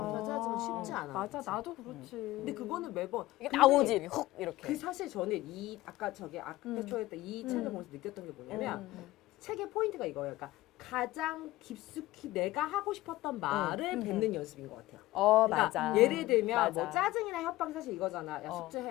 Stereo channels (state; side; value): quieter; right; 17.5 dB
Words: 쉽지 않아. 맞아, 그치? 나도 그렇지. 근데 그거는 매번 이게 근데 나오지 이렇게 훅 이렇게. 그 사실 저는 이 아까 저기 아크테초에 이 책을 보면서 느꼈던 게 뭐냐면 책의 포인트가 이거예요. 그러니까 가장 깊숙이 내가 하고 싶었던 말을 뱉는 연습인 것 같아요. 그러니까 맞아. 예를 들면 맞아. 뭐 짜증이나 협박이 사실 이거잖아. 야